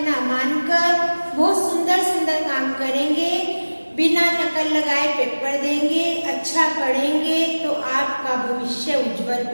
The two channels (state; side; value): inverted; both; correlation -1.00